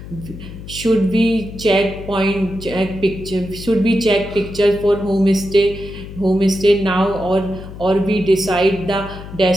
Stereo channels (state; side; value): noise; left; hum, 13 dB below the sound